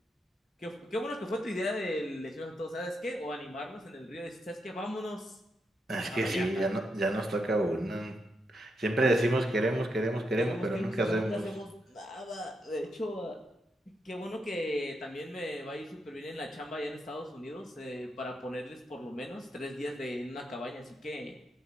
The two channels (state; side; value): normal; both; correlation 0.82